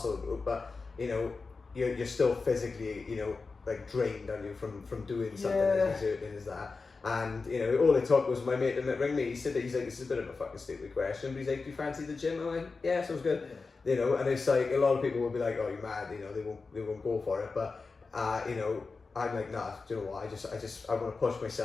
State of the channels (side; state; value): right; quieter; 4.2 dB